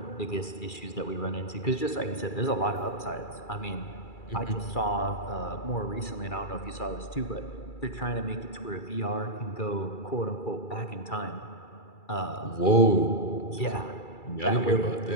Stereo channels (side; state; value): right; late; 2.3 ms